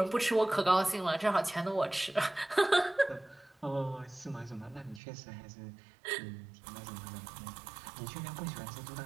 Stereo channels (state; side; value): drops out; left; at 5.0 s